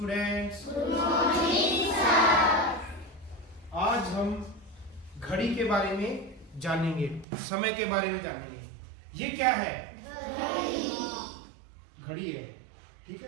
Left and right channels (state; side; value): drops out; left; at 7.2 s